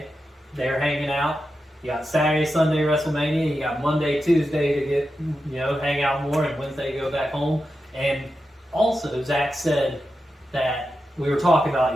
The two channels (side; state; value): both; normal; correlation 0.89